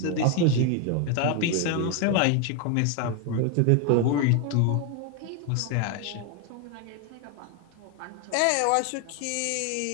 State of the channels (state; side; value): different; both; correlation 0.01